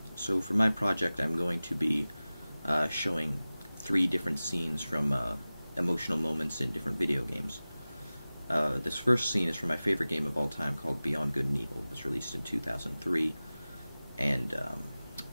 So for my project, I'm going to be showing 3 different scenes from emotional moments in different video games. This first scene is from my favorite game of all time called Beyond Good and Evil. It was released in 2003, and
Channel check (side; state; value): both; inverted; correlation -0.97